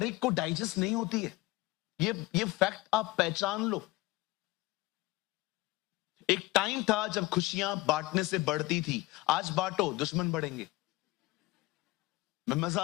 एक को डाइजेस्ट नहीं होती है। ये फैक्ट आप पहचान लो। एक टाइम था जब खुशियां बांटने से बढ़ती थी। आज बांटो, दुश्मन बढ़ेंगे। मैं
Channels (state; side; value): quieter; right; 19.9 dB